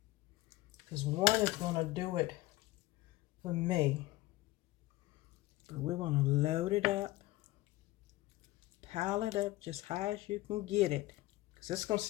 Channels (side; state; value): right; quieter; 18.1 dB